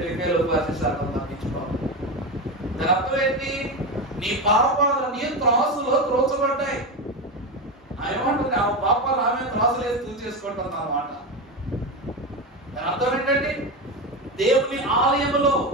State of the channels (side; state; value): both; normal; correlation 0.17